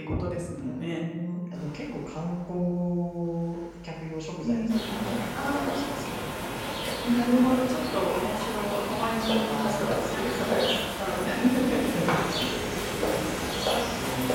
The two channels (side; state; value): both; identical; correlation 1.00